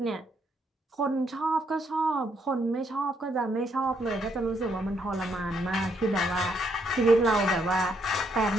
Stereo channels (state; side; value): normal; both; correlation 0.74